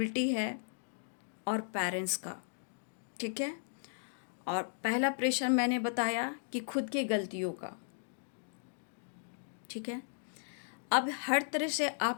है और पेरेंट्स का। ठीक है, और पहला प्रेशर मैंने बताया कि खुद के गलतियों का। ठीक है, अब हर तरह से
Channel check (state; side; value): silent; right; digital silence